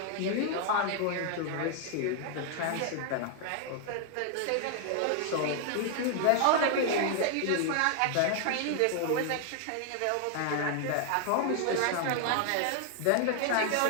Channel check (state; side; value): different; both; correlation 0.00